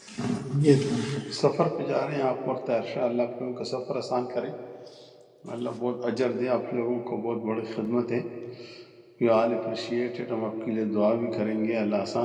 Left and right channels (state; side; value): identical; both; correlation 1.00